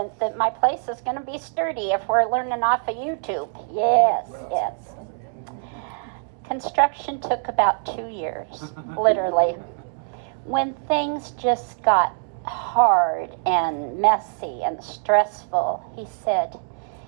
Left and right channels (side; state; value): left; silent; 63 dB below the other